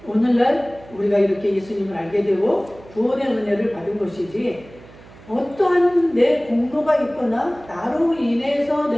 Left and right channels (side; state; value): right; noise; hum, 21 dB below the sound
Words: 오늘날 우리가 이렇게 예수님을 알게 되고 구원의 은혜를 받은 것이지, 어떠한 내 공로가 있거나 나로 인해서